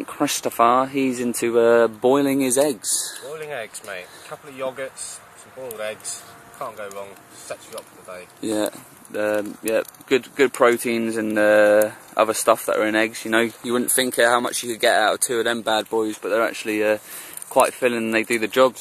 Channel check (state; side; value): identical; both; correlation 1.00